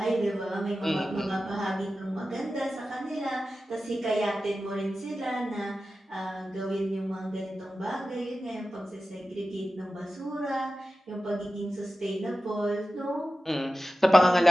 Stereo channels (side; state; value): both; normal; correlation 0.94